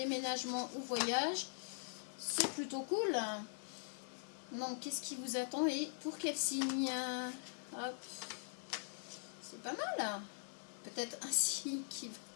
ou voyage, c'est plutôt cool. Donc, qu'est-ce qui vous attend et pour quel signe? Hop. C'est pas mal. Peut-être un signe qui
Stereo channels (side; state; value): right; silent; digital silence